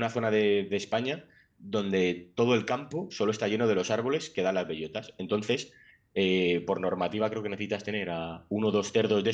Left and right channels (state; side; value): identical; both; correlation 1.00